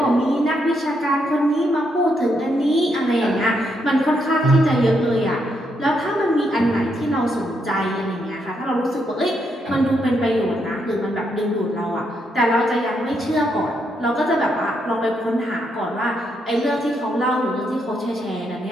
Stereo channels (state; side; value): normal; both; correlation 0.78